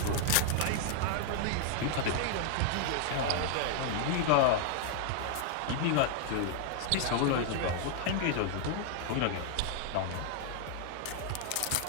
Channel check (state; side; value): different; both; correlation 0.00